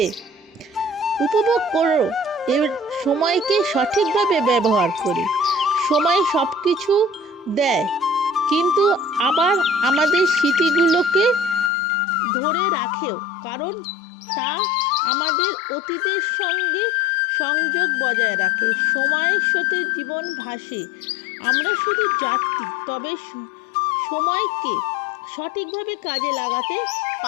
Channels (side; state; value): right; drops out; at 11.7 s